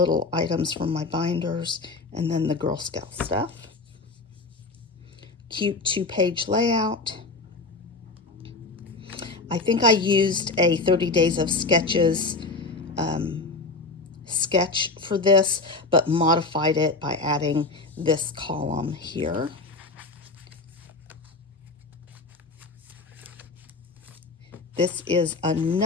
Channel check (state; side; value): quieter; right; 3.7 dB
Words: items from my binders, and then the Girl Scout stuff. Cute 2-page layout. I think I used a 30 Days of Sketches sketch for this, but modified it by adding this column here. This is